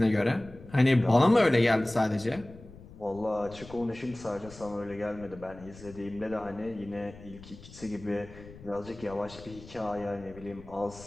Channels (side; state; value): left; noise; rumble, 18 dB below the sound